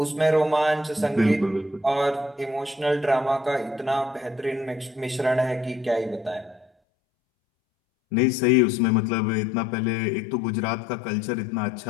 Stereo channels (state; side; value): drops out; right; at 6.7 s